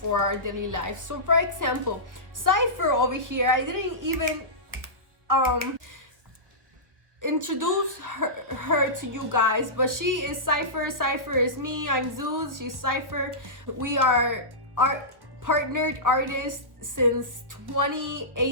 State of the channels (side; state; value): left; late; 1.3 ms